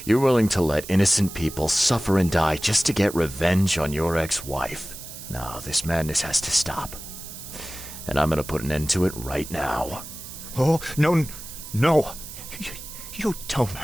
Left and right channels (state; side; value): noise; right; hiss, 12 dB below the sound